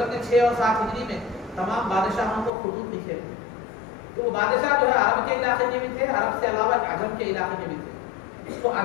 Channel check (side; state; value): right; drops out; at 2.5 s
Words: نے 6 اور 7 ہجری میں تمام بادشاہوں کو خطوط لکھے تھے. تو وہ بادشاہ جو ہے عرب کے علاقے کے بھی تھے، عرب سے علاوہ عجم کے علاقے کے بھی تھے. تو